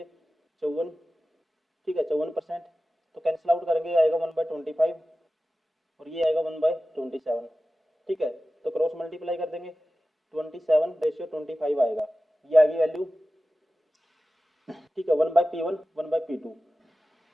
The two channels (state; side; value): normal; both; correlation 0.95